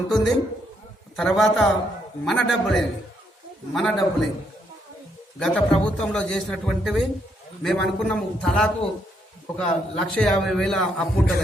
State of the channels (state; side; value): normal; both; correlation 0.75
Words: ఉంటుంది. తర్వాత మన డబ్బులే గత ప్రభుత్వంలో చేసినటువంటివి మేము అనుకున్నాము. తలాకు 1,50,000 అప్పు